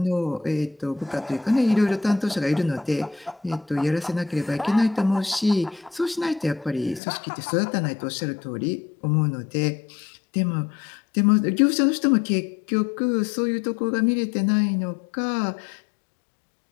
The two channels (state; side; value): drops out; right; at 7.0 s